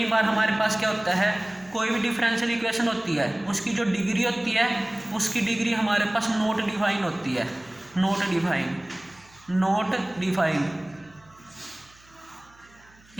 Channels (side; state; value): right; noise; hum, 28 dB below the sound